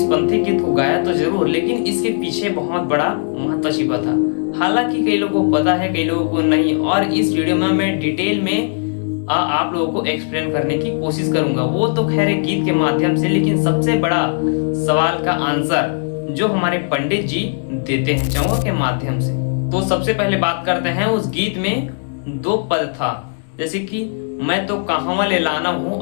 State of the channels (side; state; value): right; silent; 66 dB below the other